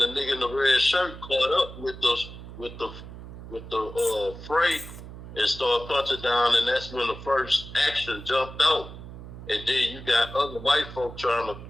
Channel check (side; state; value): right; noise; hum, 13 dB below the sound